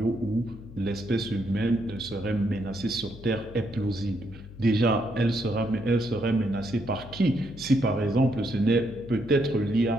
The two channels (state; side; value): noise; left; hum, 16 dB below the sound